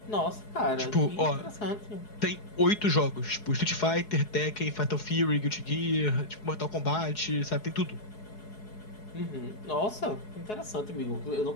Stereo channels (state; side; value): late; right; 4.7 ms